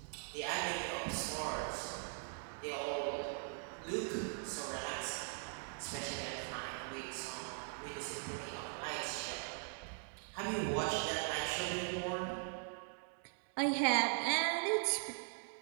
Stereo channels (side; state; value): left; silent; 51 dB below the other